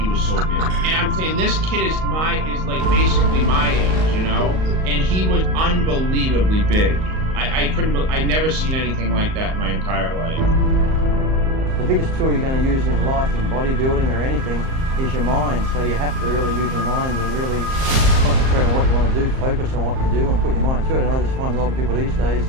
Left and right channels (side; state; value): left; late; 38 ms